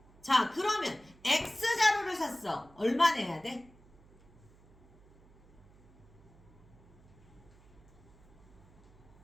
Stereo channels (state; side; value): noise; right; hum, 26 dB below the sound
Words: 자, 그러면 X자루를 샀어. 얼마 내야 돼?